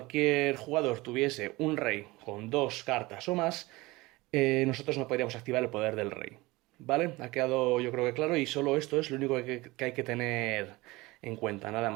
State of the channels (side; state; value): left; quieter; 21.4 dB